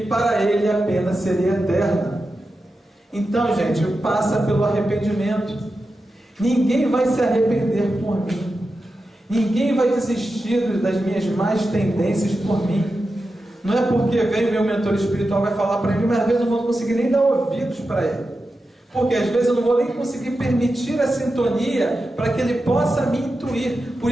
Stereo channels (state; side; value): normal; both; correlation 0.91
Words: para ele a pena seria eterna. Então, gente, passa pelo arrependimento. Ninguém vai se arrepender por mim. Ninguém vai desistir das minhas más tendências por mim. Não é porque vem o meu mentor espiritual vai falar para mim, mas às vezes eu não vou conseguir nem dar ouvidos para ele. Porque às vezes eu não vou nem conseguir permitir a sintonia para que ele possa me intuir. Por